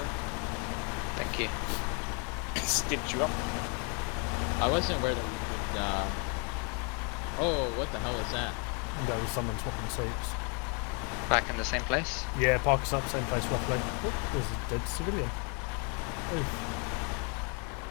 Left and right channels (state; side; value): quieter; right; 36.3 dB